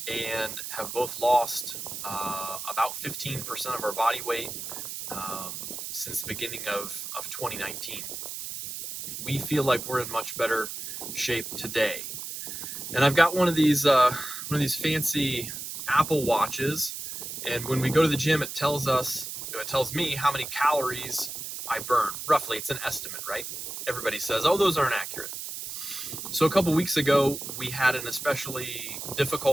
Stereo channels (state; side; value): noise; right; hiss, 7 dB below the sound